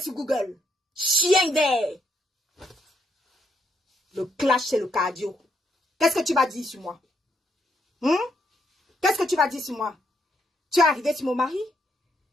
sur Google. Chien vert. Le clash, c'est le cardio. Qu'est-ce que tu vas dire sur moi? Qu'est-ce que tu vas dire sur moi? Tu es arrivé sur mon mari?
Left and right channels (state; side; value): normal; both; correlation 0.76